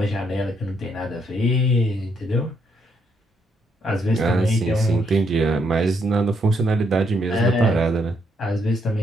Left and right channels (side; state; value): both; normal; correlation 0.74